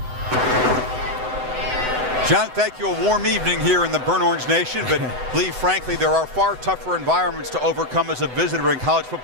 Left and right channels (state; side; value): late; left; 7.9 ms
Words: John, thank you. A warm evening here in the Burn Orange Nation, but Lee, frankly, there are far tougher environments to overcome as a visitor in college